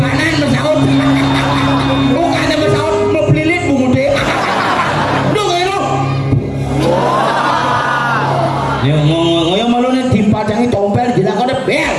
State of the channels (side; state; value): both; identical; correlation 1.00